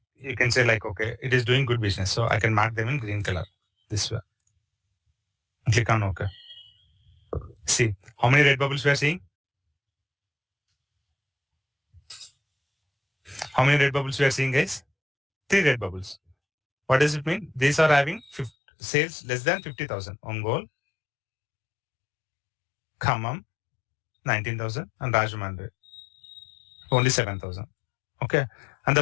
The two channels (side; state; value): right; drops out; at 18.5 s